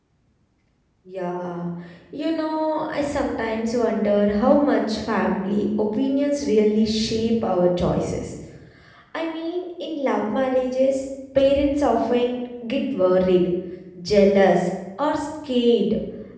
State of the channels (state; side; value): identical; both; correlation 1.00